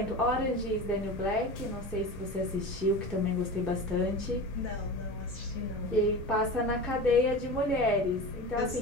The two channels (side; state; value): both; normal; correlation 0.30